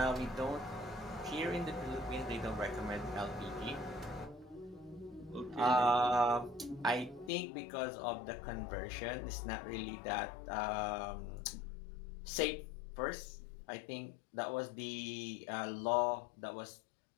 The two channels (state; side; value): drops out; right; at 7.3 s